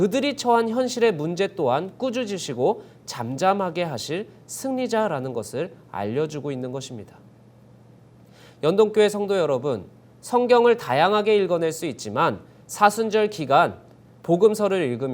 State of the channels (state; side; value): identical; both; correlation 1.00